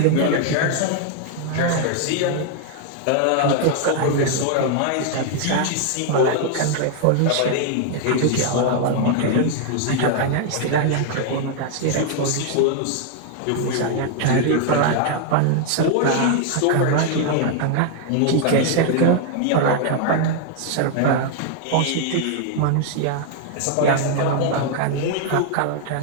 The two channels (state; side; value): different; both; correlation 0.00